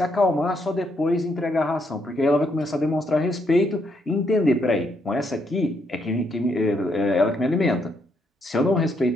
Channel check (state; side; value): normal; both; correlation 0.75